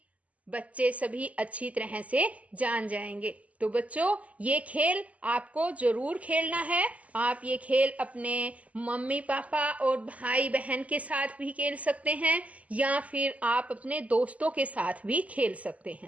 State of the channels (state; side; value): late; left; 0.070 ms